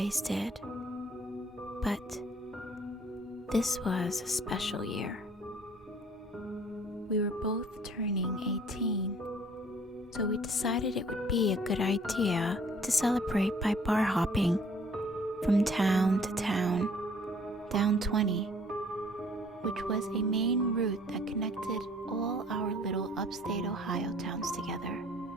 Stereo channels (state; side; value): normal; both; correlation 0.56